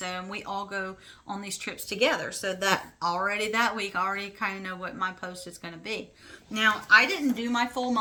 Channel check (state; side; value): identical; both; correlation 1.00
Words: we all go on these trips together. So that week, I already kind of know what my post is going to be. Now, I didn't do my full